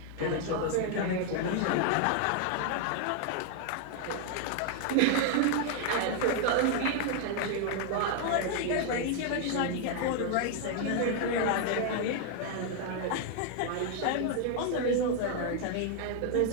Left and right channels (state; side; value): different; both; correlation 0.00